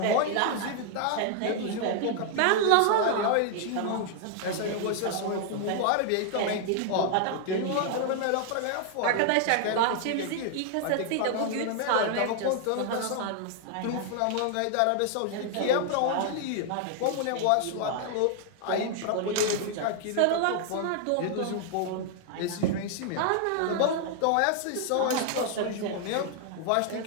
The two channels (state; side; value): different; both; correlation 0.00